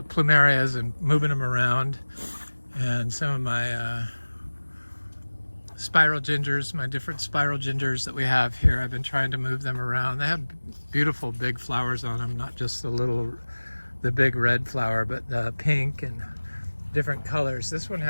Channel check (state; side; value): inverted; both; correlation -1.00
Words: plumerias and moving them around, and some of my spiral gingers, my different spiral gingers that we have here, I've been trying to move them around. They have beautiful big flowers on them, not just the big red flower, but the pink and different colors. This one